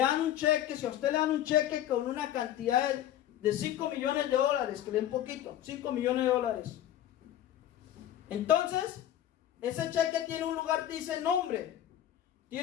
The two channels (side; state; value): right; quieter; 11.8 dB